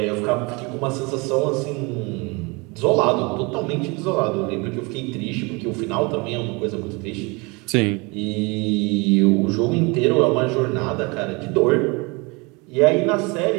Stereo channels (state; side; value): quieter; left; 27.7 dB